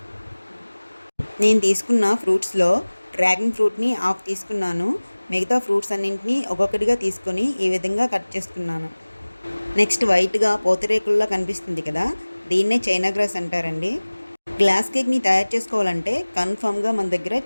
నేను తీసుకున్న ఫ్రూట్స్లో డ్రాగన్ ఫ్రూట్ని హాఫ్ తీసుకున్నాను. మిగతా ఫ్రూట్స్ అన్నింటినీ ఒక్కొక్కటిగా తీసుకొని ఈ విధంగా కట్ చేసుకున్నాను. నెక్స్ట్ వైట్గా పూతరేకుల్లా కనిపిస్తుంది కదా, దీన్నే చైనా గ్రాస్ అంటారండి. గ్లాస్ కేక్ని తయారు చేసుకోవాలంటే కన్ఫామ్గా మన దగ్గర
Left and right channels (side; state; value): both; inverted; correlation -1.00